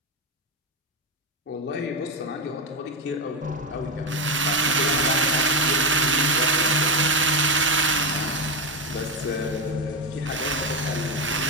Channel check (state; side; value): normal; both; correlation 0.10